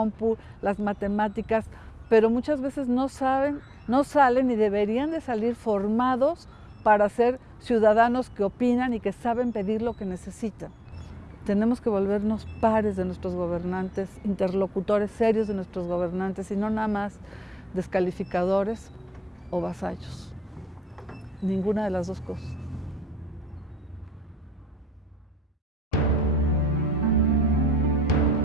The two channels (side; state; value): both; normal; correlation 0.80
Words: las matemáticas, pero muchas veces no salen y deberían de salir formados para ser ciudadanos que opinan y que saben pedir lo que necesitan. Tenemos que volvernos pares de nuestros gobernantes, interlocutores serios de nuestros gobernantes y no nada más descalificadores o vasallos. Ninguna de las dos cosas.